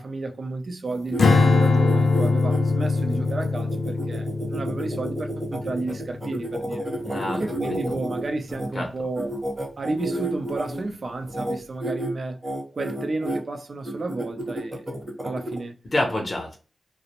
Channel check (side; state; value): both; normal; correlation 0.88